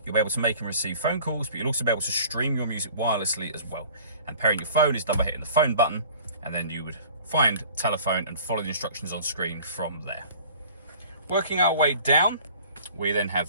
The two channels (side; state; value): both; inverted; correlation -0.47